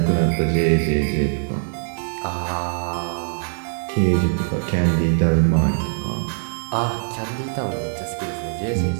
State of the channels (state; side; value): silent; left; 64 dB below the other